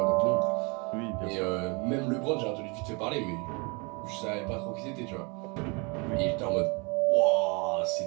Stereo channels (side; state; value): left; quieter; 30.8 dB